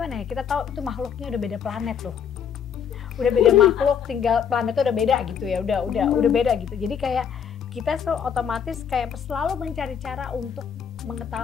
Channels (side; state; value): right; quieter; 7.7 dB